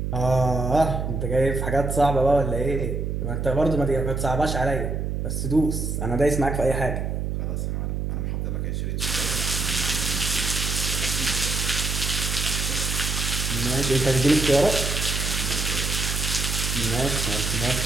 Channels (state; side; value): noise; right; hum, 2 dB below the sound